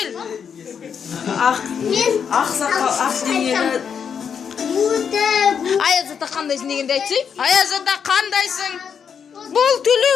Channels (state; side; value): quieter; right; 7.1 dB